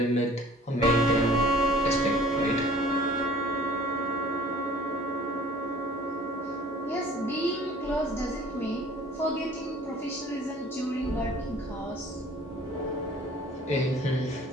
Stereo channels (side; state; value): both; normal; correlation 0.50